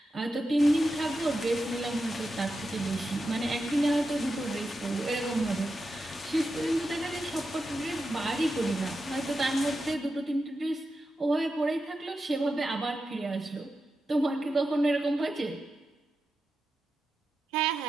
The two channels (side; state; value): both; normal; correlation 0.89